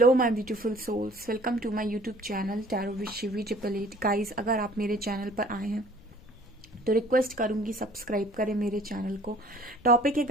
my beautiful souls, welcome to my YouTube channel tarot with Shivi 888। Guys, अगर आप मेरे channel पर आए हैं तो रिक्वेस्ट करूंगी सब्सक्राइब करें मेरे चैनल को। टॉपिक है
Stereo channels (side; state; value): left; noise; rumble, 24 dB below the sound